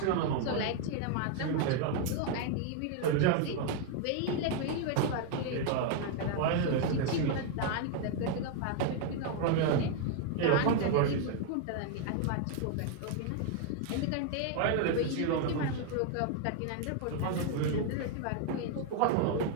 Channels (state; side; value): different; both; correlation 0.00